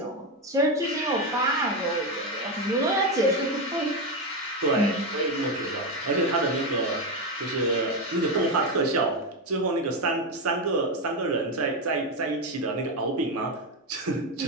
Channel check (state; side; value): normal; both; correlation 0.10